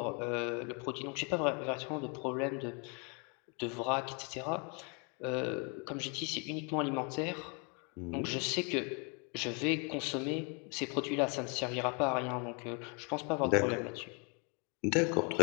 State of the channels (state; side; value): quieter; right; 34.9 dB